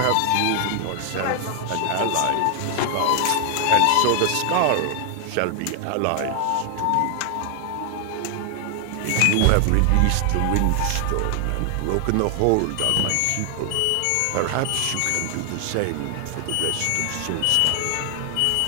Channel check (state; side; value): different; both; correlation 0.00